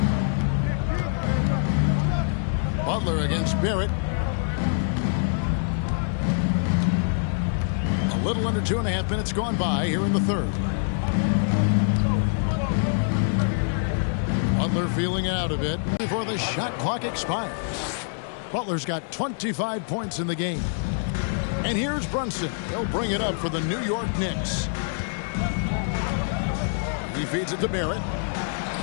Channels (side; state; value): right; silent; digital silence